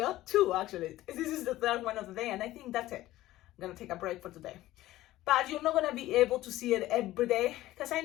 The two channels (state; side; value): quieter; right; 15.9 dB